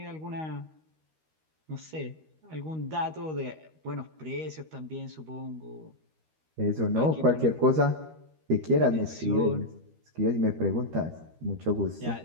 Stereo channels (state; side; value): late; left; 13 ms